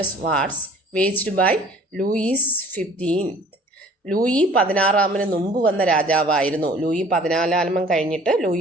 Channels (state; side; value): normal; both; correlation 0.51